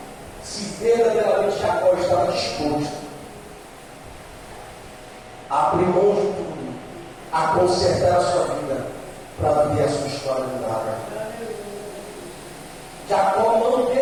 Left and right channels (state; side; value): identical; both; correlation 1.00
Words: se verdadeiramente Jacó estava disposto a abrir mão de tudo, a consertar a sua vida, para viver a sua história de nada. Jacó não